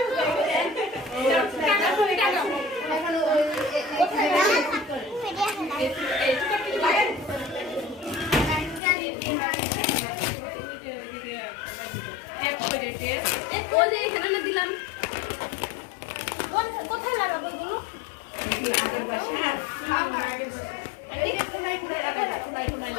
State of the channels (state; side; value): drops out; right; at 8.8 s